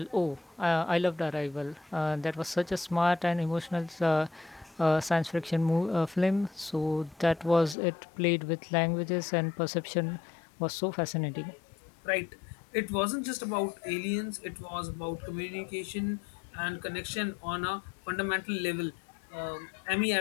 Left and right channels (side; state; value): right; drops out; at 7.8 s